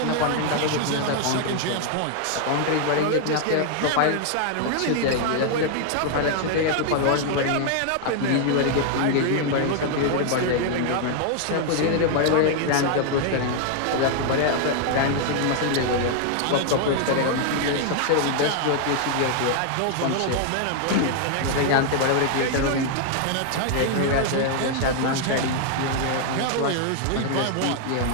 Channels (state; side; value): different; both; correlation 0.00